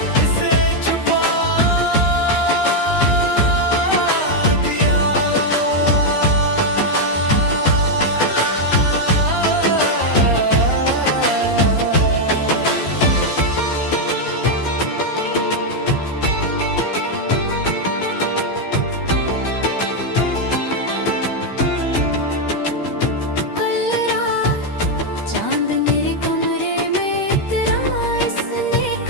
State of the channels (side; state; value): right; late; 13 ms